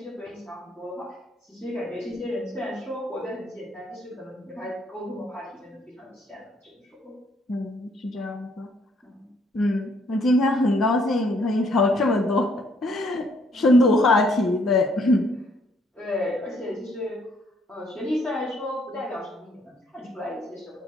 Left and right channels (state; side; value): normal; both; correlation 0.67